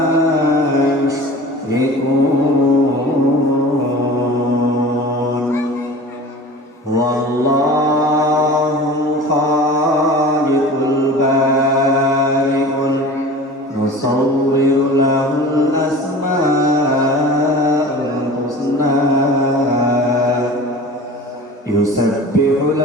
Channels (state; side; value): normal; both; correlation 0.38